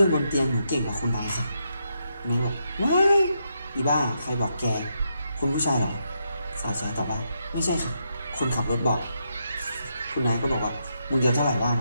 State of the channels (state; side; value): inverted; both; correlation -0.81